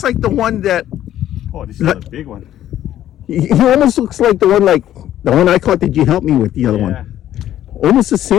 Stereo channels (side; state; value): right; quieter; 12.1 dB